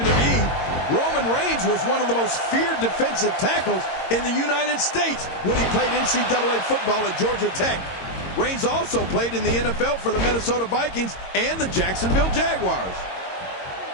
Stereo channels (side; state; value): right; late; 22 ms